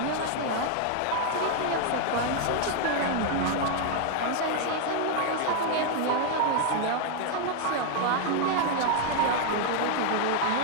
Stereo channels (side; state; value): both; different; correlation 0.00